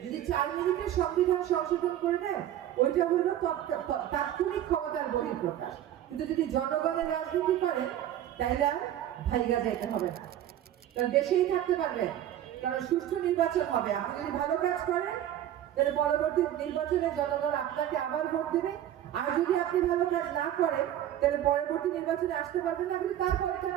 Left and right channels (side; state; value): left; quieter; 11.7 dB